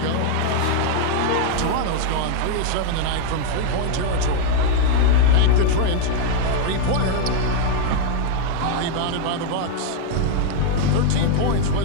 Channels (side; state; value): both; different; correlation 0.00